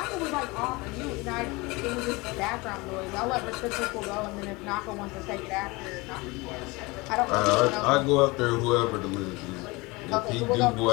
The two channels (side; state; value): right; quieter; 24.2 dB